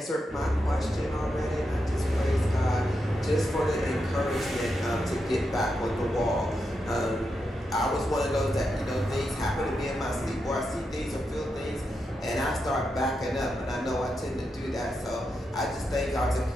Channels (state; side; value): normal; both; correlation 0.85